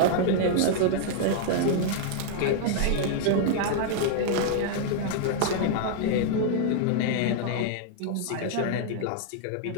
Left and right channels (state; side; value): different; both; correlation -0.01